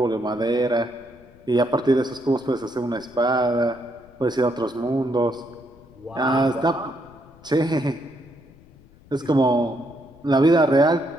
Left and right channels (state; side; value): noise; left; rumble, 26 dB below the sound